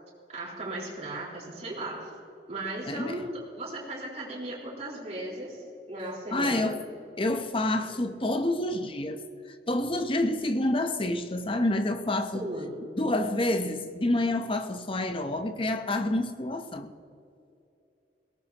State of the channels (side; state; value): both; normal; correlation 0.59